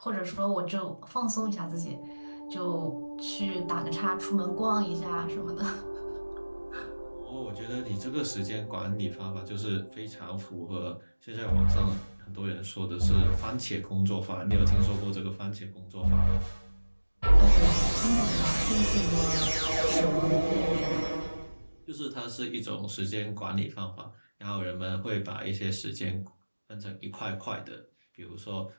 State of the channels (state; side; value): inverted; both; correlation -1.00